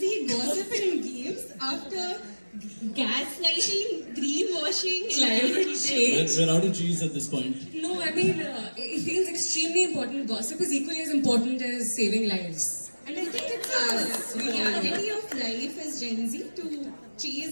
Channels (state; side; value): inverted; both; correlation -1.00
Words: gossiping games after gaslighting, greenwashing, Climate and change. We're out of cheese at this point. No, I mean, it feels extremely important. Gossip is equally as important as saving lives. And I think it's a reality of life as Gen Z to